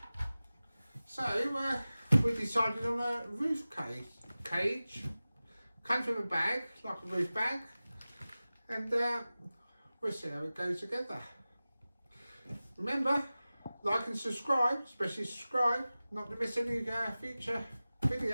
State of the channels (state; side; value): inverted; both; correlation -0.97